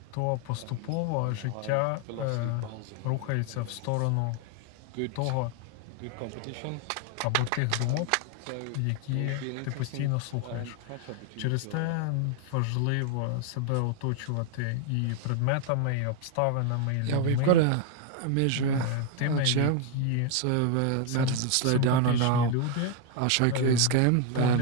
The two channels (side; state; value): both; different; correlation 0.00